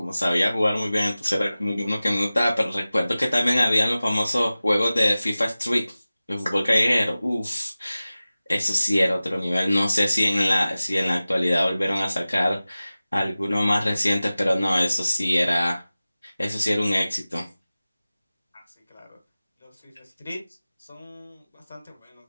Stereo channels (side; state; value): both; inverted; correlation -0.97